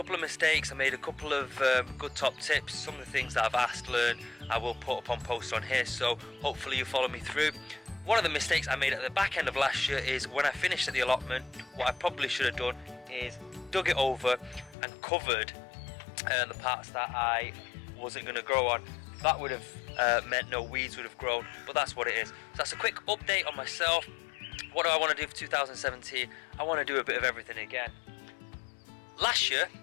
of mistakes, I made a couple of good top tips. Some of the things that I've asked, learned, I will put up on posts on here, so hopefully you follow me through. One of the mistakes I made at the back end of last year is when I finished at the allotment, what I probably should have done is dug it over and covered the parts that I wasn't going to grow on. That would have meant no weeds would have grown, but that's what it is. So that's a quick update on myself. What do I want to do for 2017? I want to do a bit of everything again. Last year,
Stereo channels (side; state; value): right; drops out; at 14.8 s